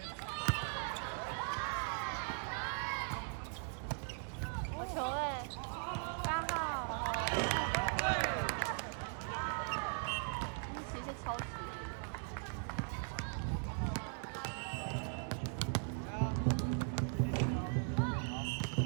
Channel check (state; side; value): silent; left; 51 dB below the other